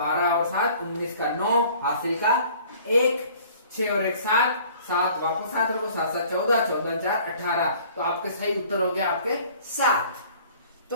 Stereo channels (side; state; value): both; inverted; correlation -0.52